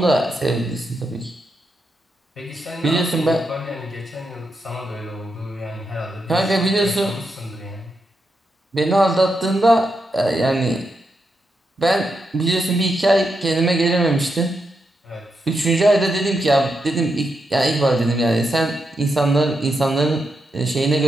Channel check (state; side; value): normal; both; correlation 0.84